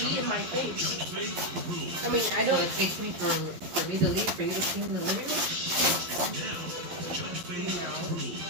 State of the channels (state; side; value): late; left; 11 ms